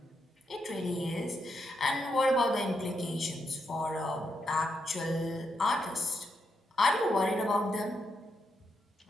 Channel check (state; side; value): normal; both; correlation 0.82